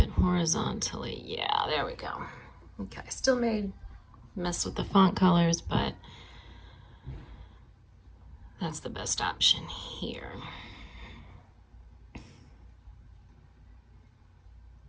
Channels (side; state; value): both; identical; correlation 1.00